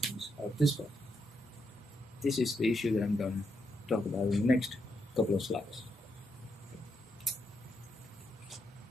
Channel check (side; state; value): both; normal; correlation 0.81